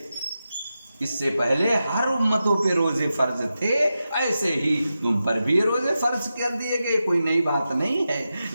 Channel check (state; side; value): inverted; both; correlation -0.91